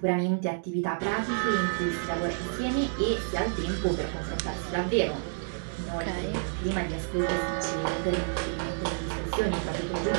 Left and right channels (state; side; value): silent; left; digital silence